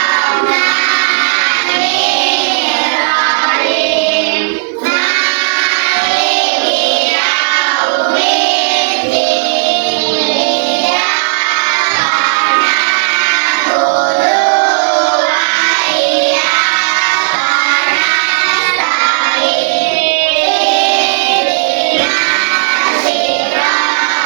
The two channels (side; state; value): left; silent; digital silence